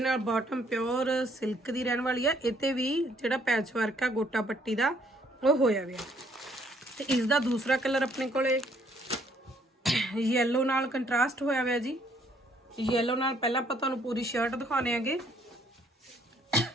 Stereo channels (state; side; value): normal; both; correlation 0.66